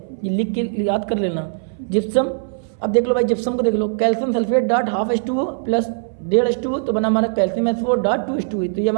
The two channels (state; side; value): silent; left; 59 dB below the other